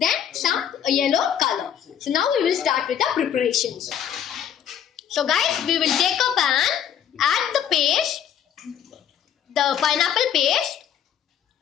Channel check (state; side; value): quieter; right; 9.2 dB